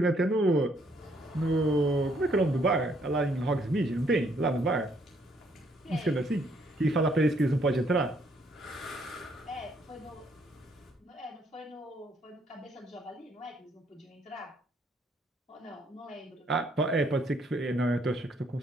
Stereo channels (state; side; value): normal; both; correlation 0.69